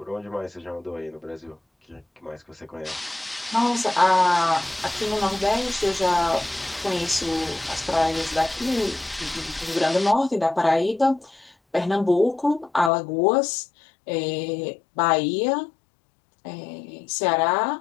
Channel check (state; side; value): drops out; right; at 12.9 s